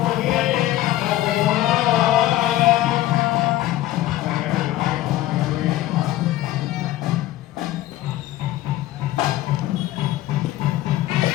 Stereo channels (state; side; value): quieter; right; 15.0 dB